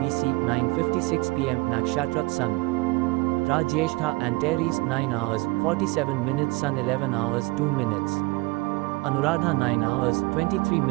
9:56 pm Nakshatra Sun Ra Jyeshtha Antares 9 hours 47 minutes Sun 11 hours 2 minutes Anuradha 9 hours, 23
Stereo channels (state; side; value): quieter; left; 24.4 dB